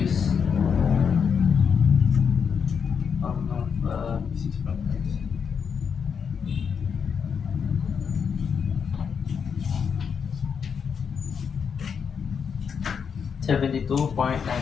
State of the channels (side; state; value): right; quieter; 6.6 dB